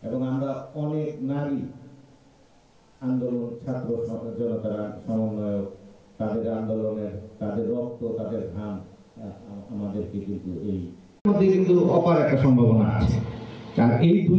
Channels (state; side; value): identical; both; correlation 1.00